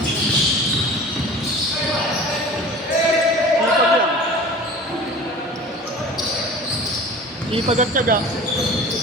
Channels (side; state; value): both; normal; correlation 0.40